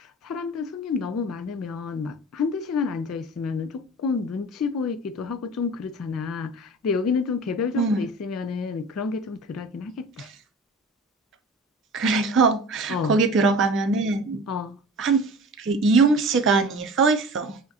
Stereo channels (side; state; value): both; normal; correlation 0.38